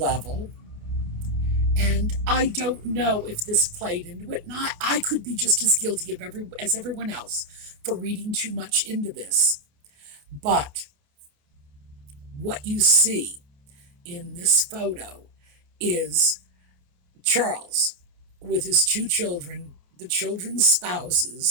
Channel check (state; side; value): late; left; 28 ms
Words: and I don't know if this played into it, and I could be just as guilty as everyone else for reading too much into this. But what you see in this photo is Charles with his two children, the children's